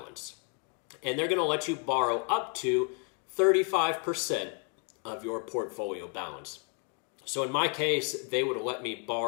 And they're going to let you borrow up to 35% of your portfolio balance. So in my case, they would let me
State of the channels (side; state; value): right; quieter; 35.9 dB